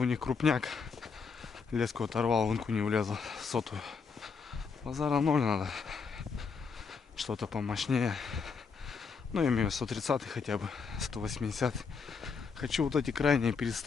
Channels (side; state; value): right; quieter; 5.4 dB